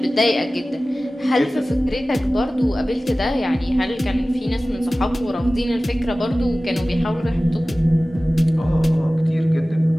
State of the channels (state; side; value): normal; both; correlation 0.97